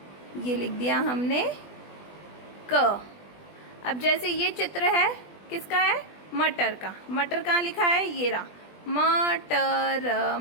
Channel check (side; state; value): right; late; 20 ms